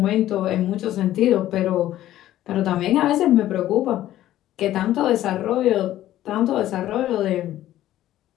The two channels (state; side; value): quieter; right; 13.5 dB